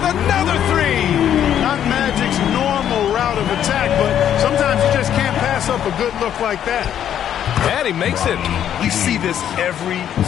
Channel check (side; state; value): right; quieter; 10.0 dB